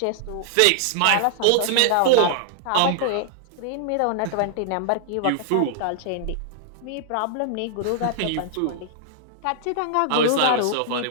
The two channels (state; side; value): different; both; correlation -0.01